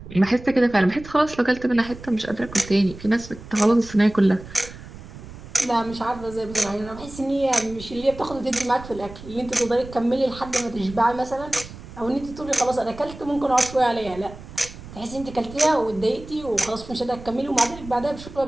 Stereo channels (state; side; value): noise; right; rumble, 15 dB below the sound